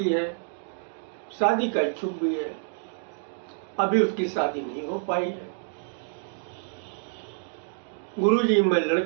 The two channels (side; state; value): left; silent; digital silence